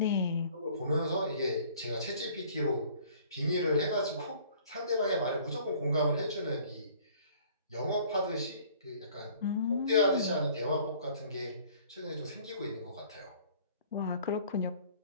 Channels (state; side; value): inverted; both; correlation -0.54